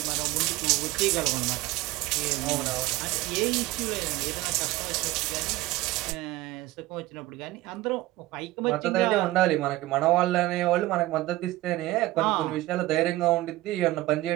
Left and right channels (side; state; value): left; quieter; 17.7 dB